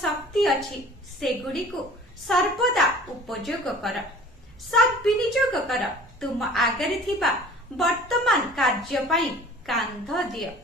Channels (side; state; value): both; normal; correlation 0.46